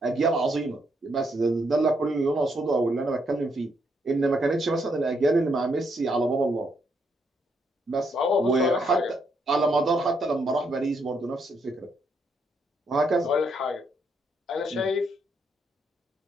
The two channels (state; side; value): normal; both; correlation 0.76